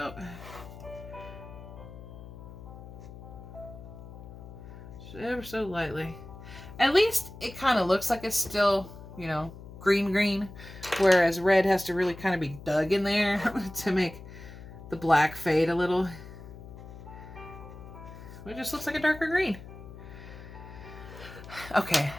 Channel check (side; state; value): left; noise; hum, 15 dB below the sound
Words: Ever so lightly. At least it kind of looks like it's still, you know, green, whereas red has to really kind of be dug in there to make the black fade a little. It just looks like a darker green. Okay,